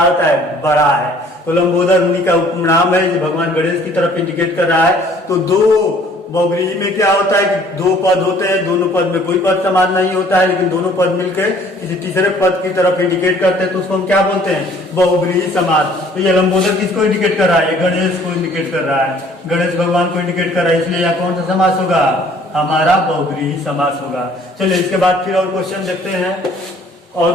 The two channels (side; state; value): both; normal; correlation 0.56